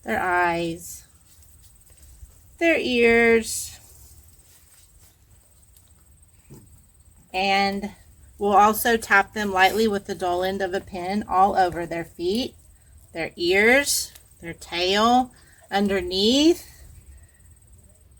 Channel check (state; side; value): identical; both; correlation 1.00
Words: their eyes, their ears. And we'll also tap them lightly with the dull end of a pin all over their feet, their ears, their tail, underneath,